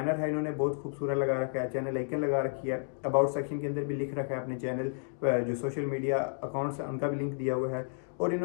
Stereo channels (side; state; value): right; silent; digital silence